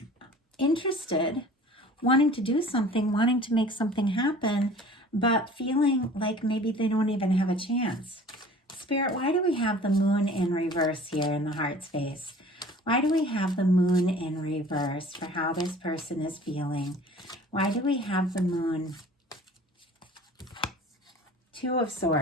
interested, wanting to do something, wanting to make something happen, but feeling like maybe they don't even have a chance. Spirit, why do we have the moon in reverse here in the heart space? Why do we have the moon in reverse for how this person is feeling? Why do we have the moon? Two of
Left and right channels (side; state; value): both; normal; correlation 0.46